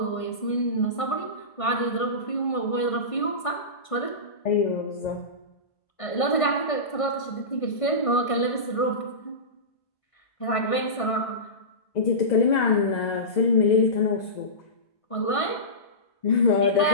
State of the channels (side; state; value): right; late; 1.5 ms